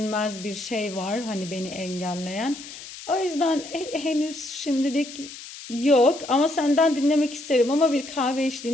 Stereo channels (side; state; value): left; noise; hiss, 14 dB below the sound